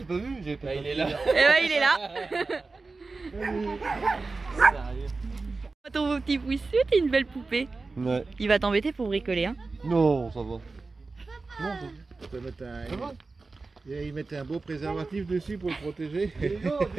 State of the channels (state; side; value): quieter; left; 3.8 dB